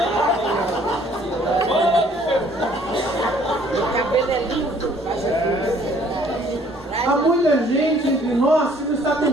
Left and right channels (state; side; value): normal; both; correlation 0.59